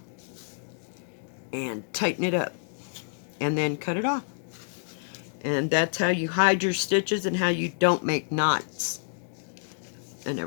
and tighten it up and then cut it off. And that's how you hide your stitches and how you don't make knots and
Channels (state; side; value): silent; right; digital silence